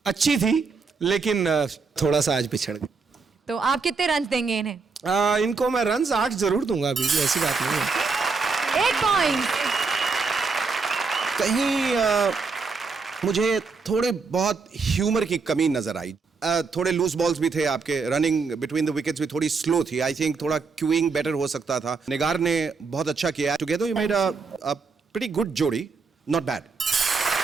अच्छी थी, लेकिन थोड़ा सा आज पिछड़ गए। तो आप कितने रन देंगे इन्हें? इनको मैं रन्स 8 जरूर दूंगा, अभी भी ऐसी बात नहीं है। 8 पॉइंट। कहीं मुझे थोड़े बहुत ह्यूमर की कमी नजर आई। थोड़े लूज बॉल्स भी थे आपके, रनिंग बिटवीन द विकेट्स भी थोड़ी स्लो थी। आई थिंक थोड़ा क्यूइंग बेटर हो सकता था। निगार ने बहुत अच्छा किया। Together you made a pretty good जोड़ी, not bad.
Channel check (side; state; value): left; quieter; 4.7 dB